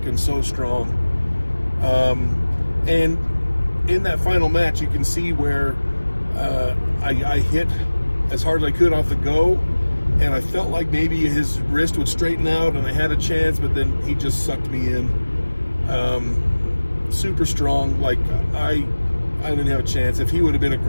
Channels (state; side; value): inverted; both; correlation -1.00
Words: and so strong. And in that final match, you can see where I hit as hard as I could off the go, and I felt like maybe his wrist would straighten out and I had a chance, but then he just sucked me in. Super strong. Like, I didn't have a chance. If he would have been